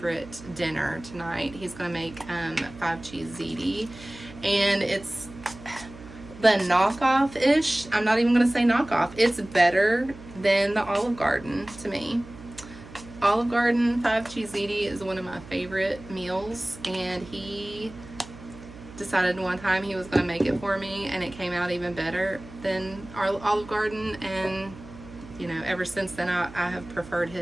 dinner tonight. He's going to make 5-cheese ziti, and it's the knockoff-ish. I'm not even going to say knockoff. It's better than the Olive Garden to me. Olive Garden 5-cheese ziti is one of my favorite meals, and he decided one time he was going to make it for me, and it came out even better than our Olive Garden, and ever since then I have preferred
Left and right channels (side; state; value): right; noise; hum, 17 dB below the sound